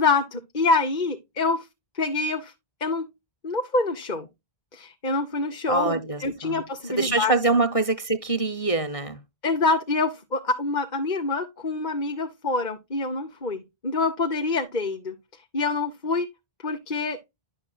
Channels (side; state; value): right; late; 1.6 ms